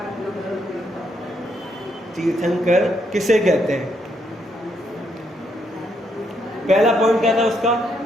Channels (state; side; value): normal; both; correlation 0.76